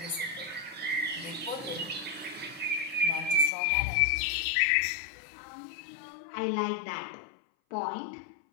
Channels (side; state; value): right; drops out; at 3.5 s